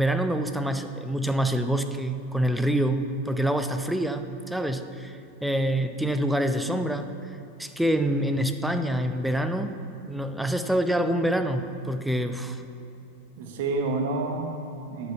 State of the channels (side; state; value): both; normal; correlation 0.67